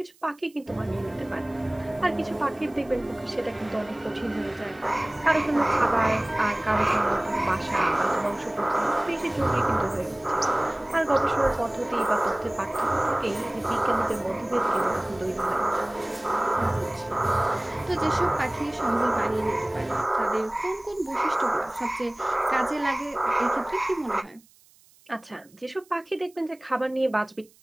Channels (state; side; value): noise; right; hiss, 29 dB below the sound